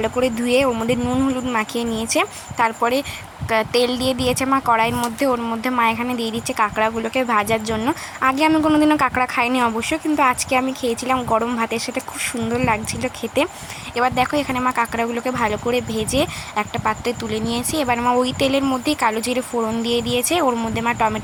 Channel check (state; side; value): identical; both; correlation 1.00